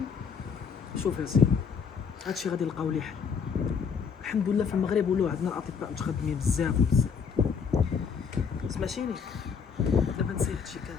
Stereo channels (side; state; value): right; quieter; 6.3 dB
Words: شوف يا سيدي، هادشي غادي نلقاو ليه حل. الحمد لله في المغرب ولاو عندنا الاطباء متخدمين بزاف وبزاف. سمعتيني؟ دابا نسي هادشي